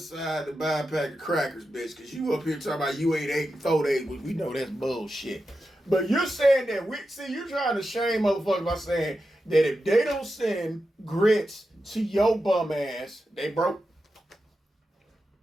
to buy a pack of crackers, bitch, because you up here talking about you ain't 8 and 4 days. We know that's bullshit. But you're saying that you're trying to shame motherfuckers by saying that if they don't send grits to your bum ass, they broke.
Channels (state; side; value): normal; both; correlation 0.90